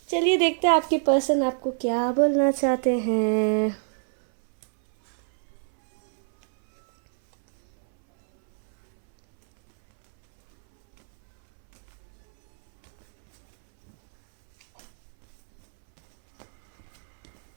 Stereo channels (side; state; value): left; silent; 62 dB below the other